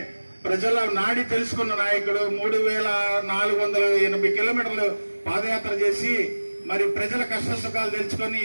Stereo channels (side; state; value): both; inverted; correlation -1.00